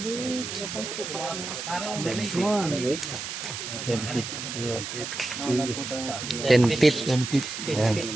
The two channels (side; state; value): right; noise; hiss, 6 dB below the sound